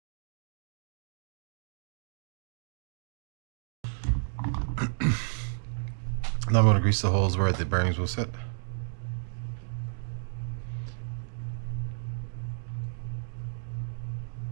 Now I'm going to grease the holes where the bearings will sit.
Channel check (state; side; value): silent; left; digital silence